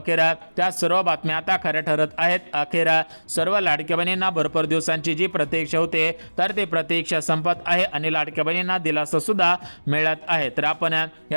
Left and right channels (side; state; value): both; inverted; correlation -1.00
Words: त्या सर्व बातम्या आता खऱ्या ठरत आहेत। अखेर सर्व लाडक्या बहिणींना भरपूर दिवसांची जी प्रतीक्षा होते तर ती प्रतीक्षा संपत आहे आणि लाडक्या बहिणींना दिलासा सुद्धा मिळत आहे। तर आपण